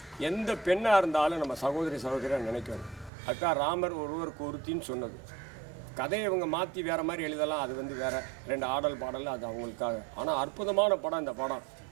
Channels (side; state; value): left; drops out; at 3.1 s